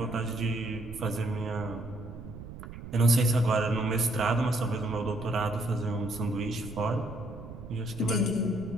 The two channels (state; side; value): noise; right; rumble, 12 dB below the sound